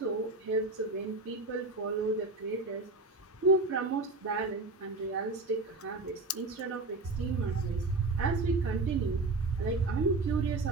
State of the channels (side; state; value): left; quieter; 3.3 dB